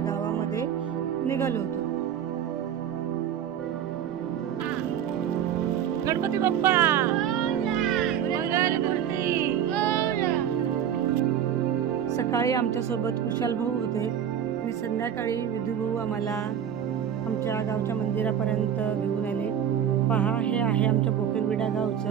निघालो होतो. गणपती बाप्पा मंगलमूर्ती. सकाळी आमच्यासोबत कुशाल भाऊ होते आणि संध्याकाळी विधू भाऊ आम्हाला आमच्या गावच्या मंदिरापर्यंत घेऊन आले. पहा, हे आहे आमच्या बोकेरविडा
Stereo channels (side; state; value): left; quieter; 9.3 dB